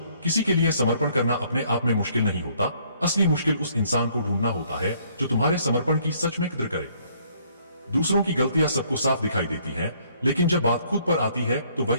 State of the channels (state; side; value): inverted; both; correlation -0.64